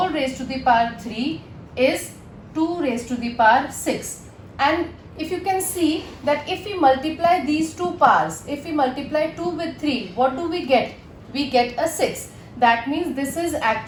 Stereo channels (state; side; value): identical; both; correlation 1.00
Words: raised to the power 3 is 2 raised to the power 6. And if you can see that if we multiply these two powers, if we multiply 2 with 3, what do we get? We get a 6. That means this is